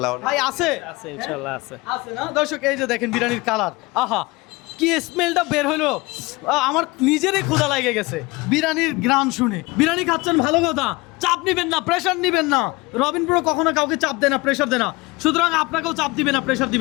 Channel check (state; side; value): quieter; right; 23.4 dB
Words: ভাই আছে? আছে ইনশাআল্লাহ আছে। আছে না? দর্শক এই যে দেখেন বিরিয়ানির কালার, আহা কি স্মেলটা বের হলো, আমার নিজেরই ক্ষুধা লাগে গেছে বিরিয়ানির গ্রান শুনে। বিরিয়ানি খাচ্ছেন ভালো কথা, চাপ নিবেন না, প্রেশার নিবেন না। রবিন ব্রো কখনো কাউকে চাপ দেয় না, প্রেশার দেয় না, সুতরাং আপনাকেও চাপ দিবে না, প্রেশার